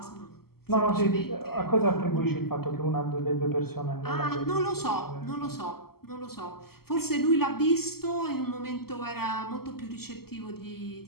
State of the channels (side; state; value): right; late; 0.95 ms